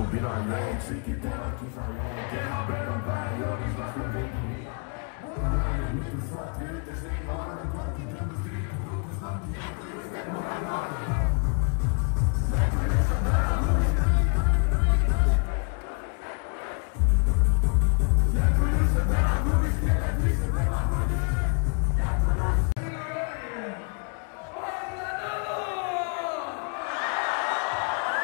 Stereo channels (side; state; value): right; quieter; 37.8 dB